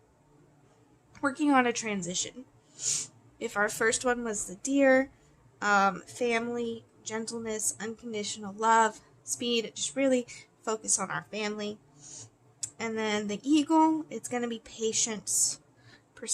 working on a transition. If our first one was the deer, family, gentleness, unconditional love, speed, just really focus on our family. And then the eagle, it's going to be patience,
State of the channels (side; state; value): both; identical; correlation 1.00